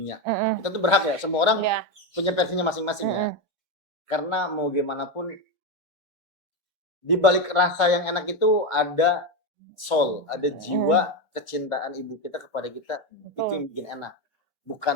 Kita tuh berhak ya, semua orang punya versinya masing-masing ya. Karena mau gimana pun di balik rasa yang enak itu ada soul, ada jiwa kecintaan ibu kita kepada kita. Itu yang bikin enak.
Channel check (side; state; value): both; normal; correlation 0.12